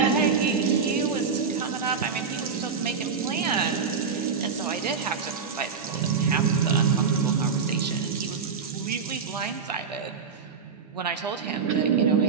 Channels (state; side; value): quieter; left; 5.8 dB